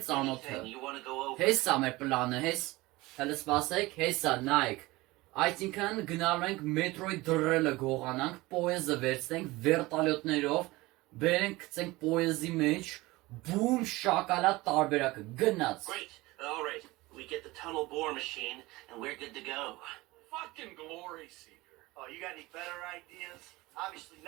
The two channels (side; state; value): left; quieter; 20.7 dB